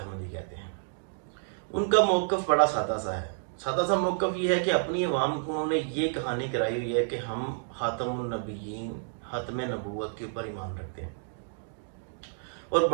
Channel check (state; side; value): silent; left; digital silence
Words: कहते हैं, उनका मौक़िफ़ बड़ा सादा सा है। सादा सा मौक़िफ़ ये है कि अपनी अवाम को उन्होंने ये कहानी कराई हुई है कि हम ख़ातमुन नबिय्यीन, ख़ातमे नबूवत के ऊपर ईमान रखते हैं, और